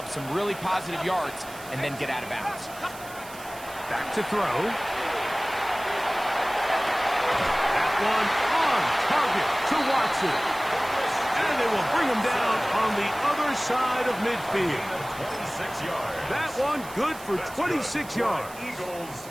some really positive yards and then get out of bounds. Back to throw. That one on target to Watson. And they will bring him down on the other side of midfield. That one good for 26 yards.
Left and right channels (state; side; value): noise; right; hiss, 17 dB below the sound